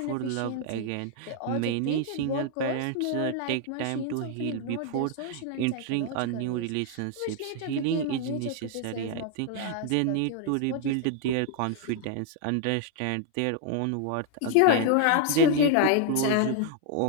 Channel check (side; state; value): both; different; correlation 0.00